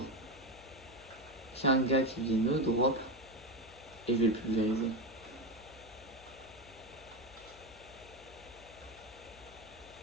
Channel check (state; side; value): noise; left; hum, 22 dB below the sound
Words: qu'il y ait un gars qui vienne au drop et je vais le pulvériser.